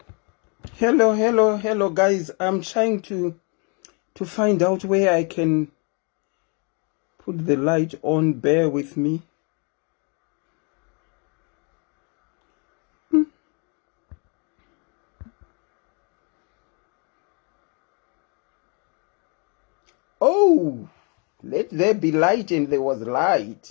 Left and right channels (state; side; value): quieter; right; 35.1 dB